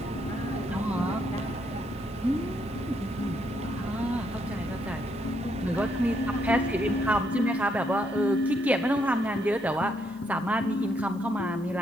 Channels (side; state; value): right; noise; hiss, 29 dB below the sound